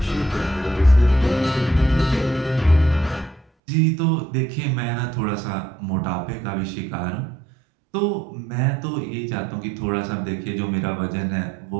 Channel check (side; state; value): left; drops out; at 3.5 s